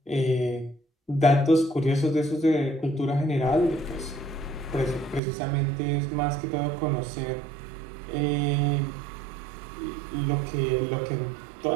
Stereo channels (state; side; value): drops out; left; at 5.2 s